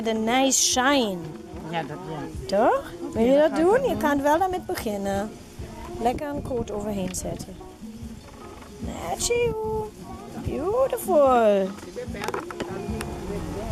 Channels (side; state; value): both; identical; correlation 1.00